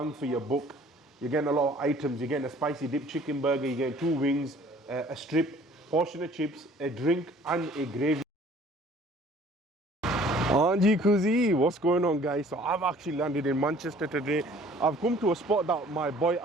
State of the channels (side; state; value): both; normal; correlation 0.53